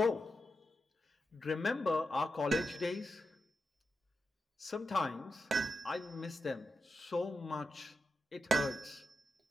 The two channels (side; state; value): both; normal; correlation 0.88